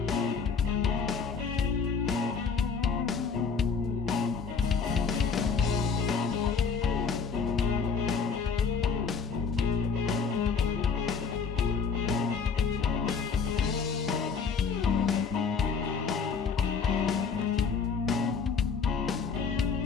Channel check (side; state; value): right; quieter; 5.5 dB